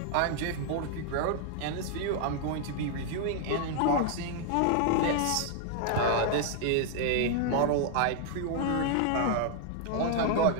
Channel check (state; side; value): different; both; correlation 0.00